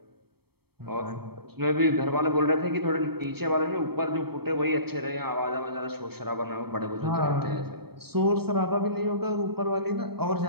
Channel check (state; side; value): late; left; 0.96 ms